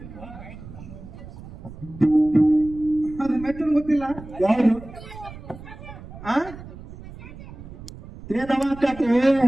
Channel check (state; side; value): noise; right; rumble, 15 dB below the sound